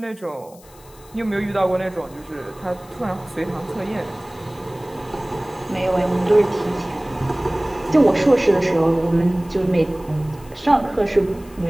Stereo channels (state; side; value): noise; left; hiss, 25 dB below the sound